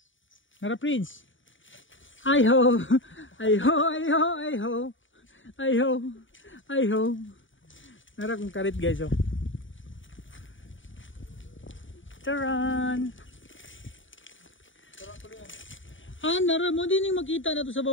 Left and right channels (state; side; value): late; right; 0.56 ms